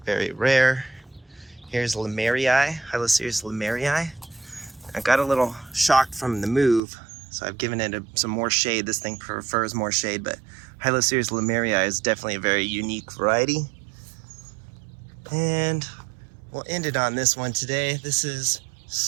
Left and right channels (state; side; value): drops out; left; at 6.8 s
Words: very rare. Here's Lemerii, Hyloceres lemerii. I got a little shocked from the move, so I've given it some more shade. This thing prefers more shade, but Hyloceres lemerii is definitely a very unique variety. And we'll end it on this one today. This is